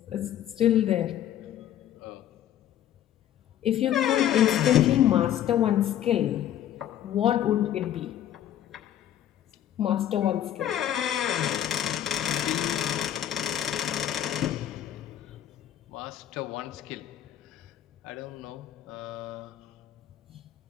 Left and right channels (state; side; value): quieter; right; 11.1 dB